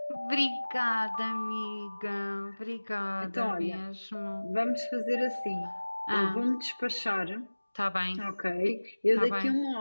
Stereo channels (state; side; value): inverted; both; correlation -1.00